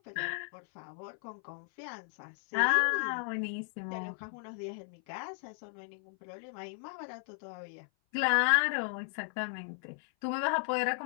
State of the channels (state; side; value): silent; right; 55 dB below the other